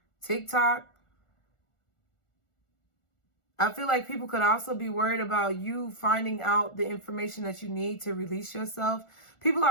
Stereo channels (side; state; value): right; late; 1.4 ms